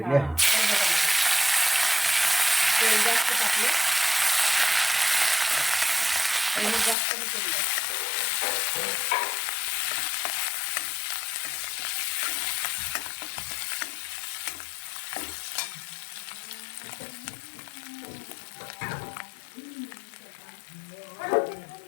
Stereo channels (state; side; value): drops out; right; at 7.0 s